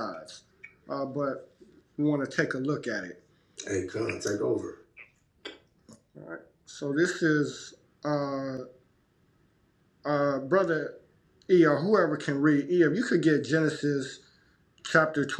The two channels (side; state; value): both; identical; correlation 1.00